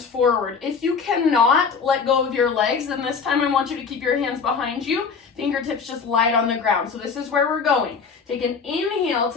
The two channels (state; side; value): quieter; right; 5.5 dB